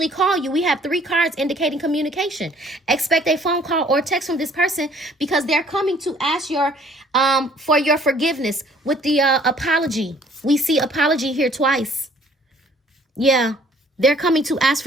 call you. We have 3 cards indicating communication. Expect a phone call or text from this person because they're coming to ask for your forgiveness with the apology. We see apology here twice. Yeah, they're coming to ask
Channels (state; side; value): normal; both; correlation 0.57